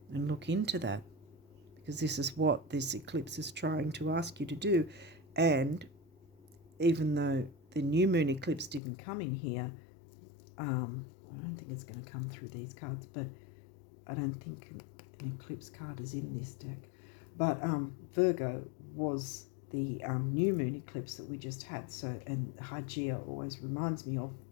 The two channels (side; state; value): right; drops out; at 8.8 s